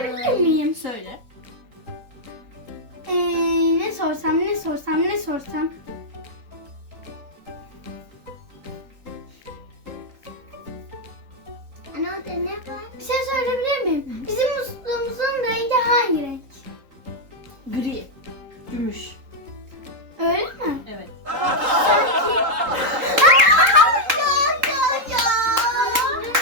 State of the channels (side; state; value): left; late; 3.8 ms